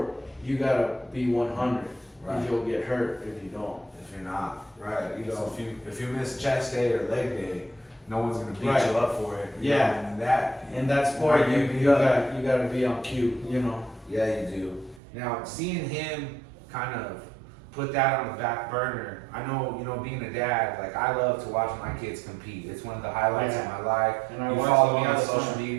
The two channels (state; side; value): drops out; left; at 15.0 s